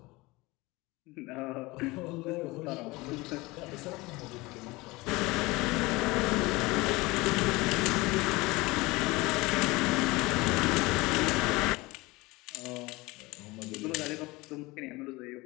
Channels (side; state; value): right; quieter; 22.3 dB